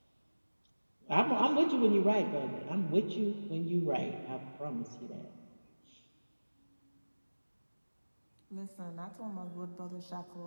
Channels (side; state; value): both; inverted; correlation -1.00